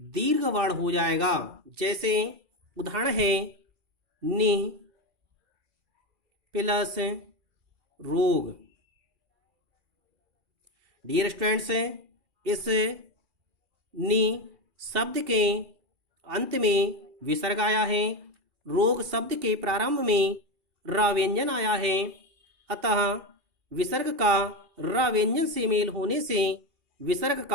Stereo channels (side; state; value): left; late; 2.4 ms